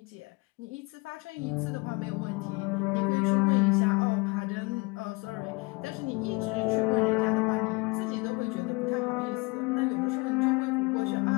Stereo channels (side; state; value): right; quieter; 26.5 dB